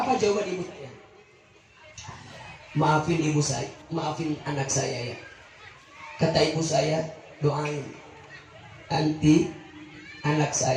jawaban ibu saya? Maafin ibu saya, maafin anak saya ya. Kata ibu saya, doain nanti anak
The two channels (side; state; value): both; identical; correlation 1.00